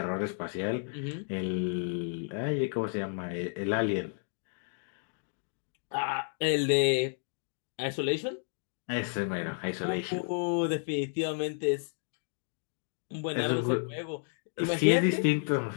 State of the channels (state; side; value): silent; right; digital silence